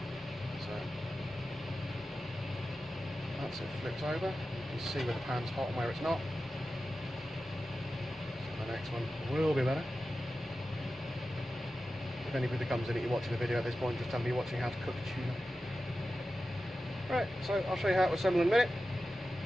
So that's it flipped over. You can see where the pan's hot and where it's not. So the next one will be better. If anybody comes in and you're watching the video at this point, just tell me you're watching how to cook tuna. Right, so I'll show you how to assemble in a minute,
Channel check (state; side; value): normal; both; correlation 0.93